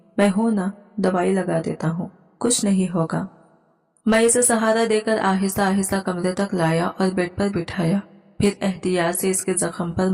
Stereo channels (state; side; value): identical; both; correlation 1.00